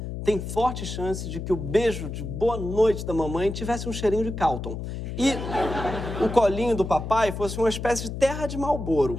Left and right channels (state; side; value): noise; left; hum, 6 dB below the sound